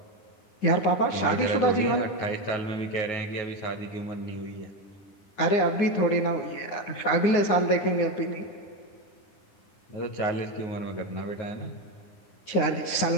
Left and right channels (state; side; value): late; right; 9.7 ms